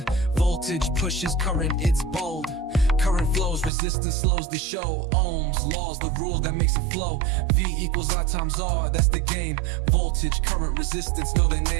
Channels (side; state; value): left; drops out; at 3.7 s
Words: Voltage pushes current, it's bold. Current flows, resistance slows the show. Ohms, laws, the rule that makes it flow. V equals I times R, that's the game. Voltage, current, resistance, know their